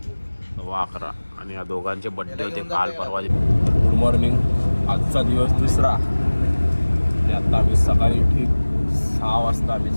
11:15 आणि या दोघांचे बड्डे होते काल परवा. Good morning. आजचा दिवस दुसरा आणि आता आम्ही सकाळी ठीक 6 वाजता आम्ही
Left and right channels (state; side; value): inverted; both; correlation -1.00